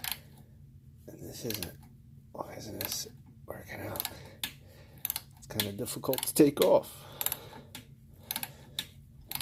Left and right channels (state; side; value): identical; both; correlation 1.00